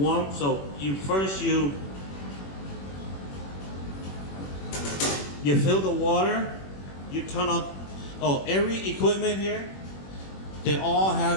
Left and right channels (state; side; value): late; right; 21 ms